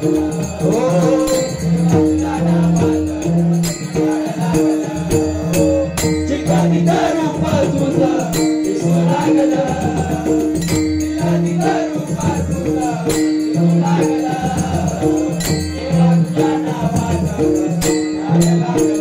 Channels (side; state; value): both; identical; correlation 1.00